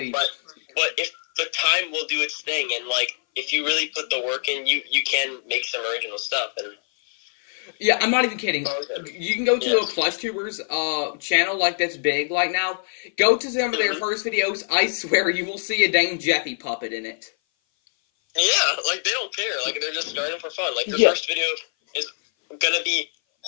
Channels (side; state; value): right; silent; 58 dB below the other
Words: But if the time will do its thing, and, like, if you really put the work in, you can make some original stuff. And yeah, I'm not even kidding. You can go to a plush tubers channel, like, that's big like now. Go to some of their first videos. I swear you will see a dang Jeffy puppet in it. Yeah, like, they don't care. Like, they're just starting for fun. Like, their first video is gonna be